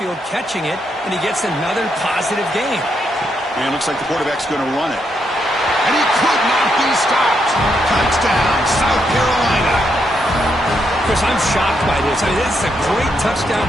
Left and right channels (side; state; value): both; normal; correlation 0.79